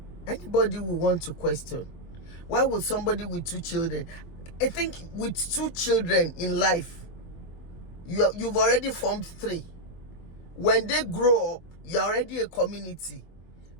Anybody will want to question, why would somebody with 2 children, I think with 2 children in life, you've already formed 3. When they grow up, you're already a community.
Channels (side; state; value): right; late; 24 ms